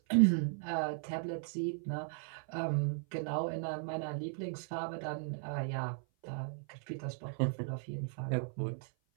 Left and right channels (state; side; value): silent; left; 53 dB below the other